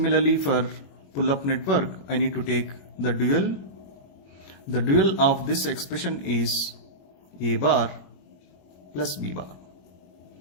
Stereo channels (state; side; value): late; right; 21 ms